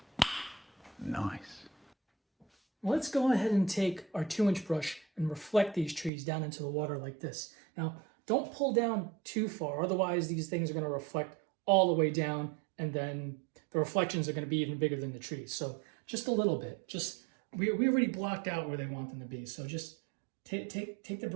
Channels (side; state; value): left; drops out; at 6.1 s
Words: Nice. Let's go ahead and take our 2-inch brush and reflect these trees down into the water like this. Now, don't pull down too far, otherwise these things are going to reflect all the way down, and then the reflections are going to be even bigger than the trees. So just a little bit. We already blocked out where they want them to be, so just take the